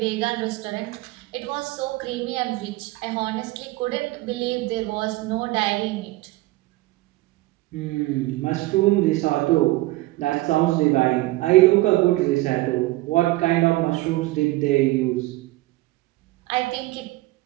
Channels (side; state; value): left; quieter; 19.3 dB